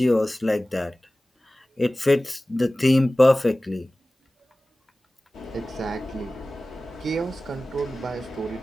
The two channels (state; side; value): normal; both; correlation 0.97